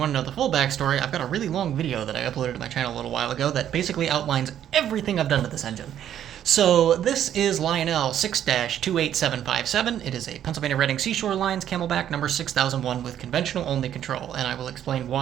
to know the full backstory, I've got a really long video that I uploaded to my channel a little while ago that basically outlines everything I've done to this engine. So this is Lionel 6-28757. It is a Pennsylvania Reading Seashore Lines Camelback number 6001 with conventional only control, and I will explain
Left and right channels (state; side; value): quieter; left; 10.5 dB